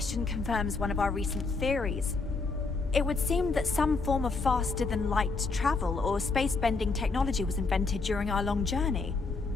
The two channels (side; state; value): right; quieter; 4.1 dB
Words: confirms one of our recent theories. It would seem that some form of faster-than-light travel or space-bending technology was invented during our long journey.